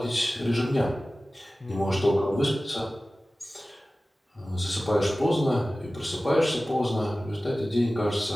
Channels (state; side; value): normal; both; correlation 0.96